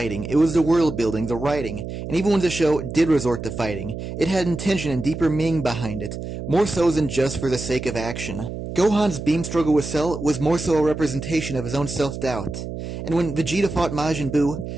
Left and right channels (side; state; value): right; noise; hum, 7 dB below the sound